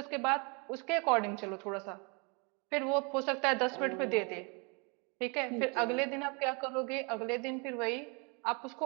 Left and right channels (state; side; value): quieter; left; 32.5 dB